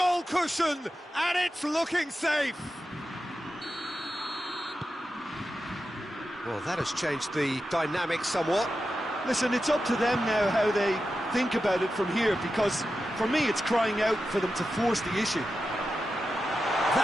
cushion, and it's looking safe. Well, that has changed the dynamic somewhat. Listen, it's up to them now how they think about it from here, because for me it's crying out for them to force the issue.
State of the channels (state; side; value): normal; both; correlation 0.91